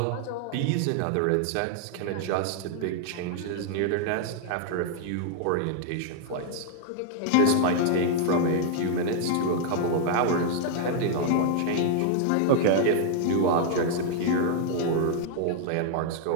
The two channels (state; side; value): different; both; correlation 0.00